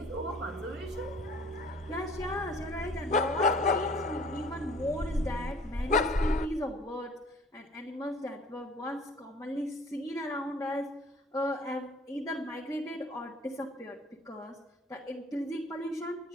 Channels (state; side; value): normal; both; correlation 0.51